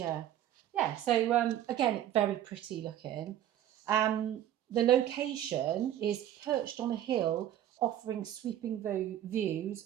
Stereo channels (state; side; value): quieter; left; 11.7 dB